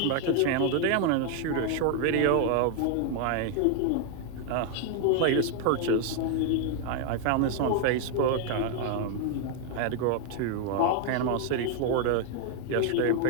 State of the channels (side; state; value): both; different; correlation 0.00